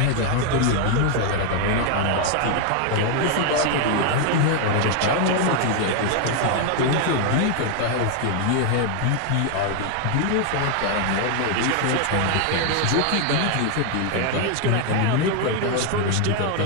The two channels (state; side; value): different; both; correlation 0.00